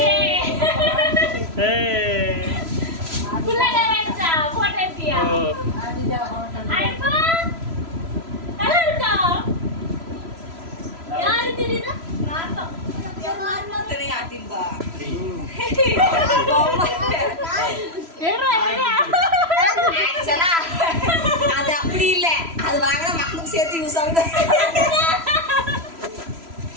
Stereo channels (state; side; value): late; left; 3.0 ms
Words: ஏய் புள்ளங்க வெச்சா போட்டோ எடுத்தியா? அதுதான் ஹோட்டல். ஐபா நல்லா இருக்கா? யாரு தெரியுதா? நான் தான். யார் மாதிரி ஆட்டிம்பா. ஆக்சுவலா அது அப்படி இல்ல, அது வாங்கினா மக்களுக்கு சேர்த்து யூஸ் ஆகுது.